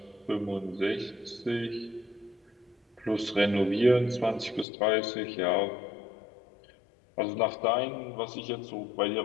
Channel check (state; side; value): drops out; right; at 4.7 s